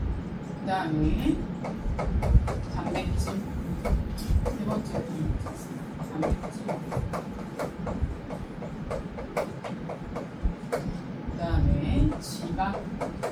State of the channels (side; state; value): both; identical; correlation 1.00